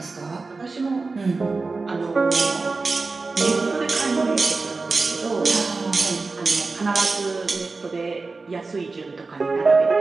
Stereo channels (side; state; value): left; quieter; 3.9 dB